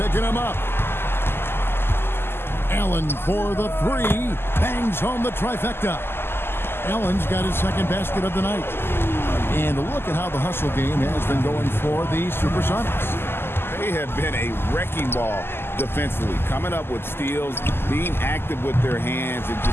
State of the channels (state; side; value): late; right; 0.11 ms